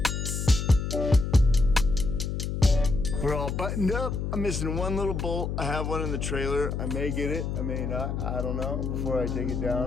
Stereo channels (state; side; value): noise; left; hum, 3 dB below the sound